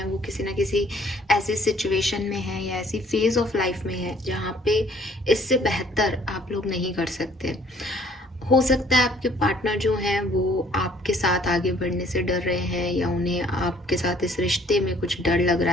वो किसी ना किसी ऐसी सिचुएशन में हैं या ऐसी फेज ऑफ लाइफ में है जहाँ पे इससे बेहतर आप लोग नहीं कर सकते। हो सकता है आपके पार्टनर जो हैं वो आपके साथ आगे बढ़ने से डर रहे हैं, या उन्हें आपके साथ इस रिश्ते में कुछ डर लग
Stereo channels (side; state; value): both; normal; correlation 0.59